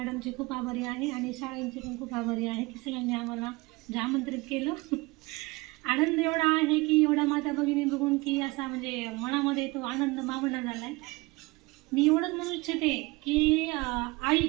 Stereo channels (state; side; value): quieter; left; 23.7 dB